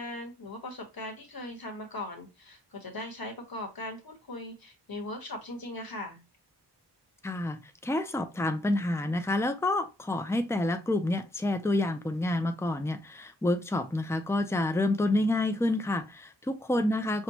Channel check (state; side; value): normal; both; correlation 0.77